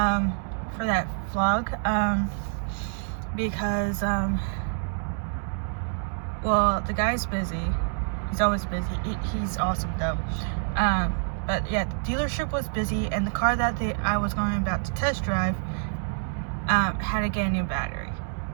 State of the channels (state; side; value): silent; left; 60 dB below the other